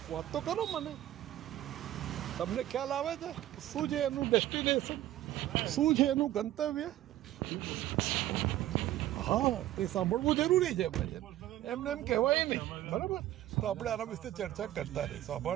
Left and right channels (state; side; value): quieter; left; 13.8 dB